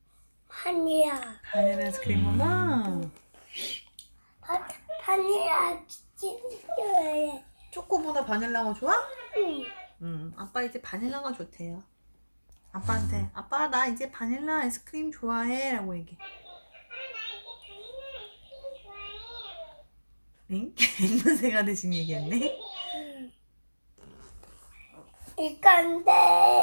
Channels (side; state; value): both; inverted; correlation -1.00